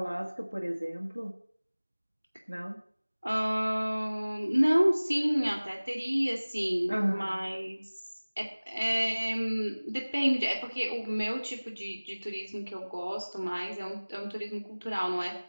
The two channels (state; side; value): inverted; both; correlation -1.00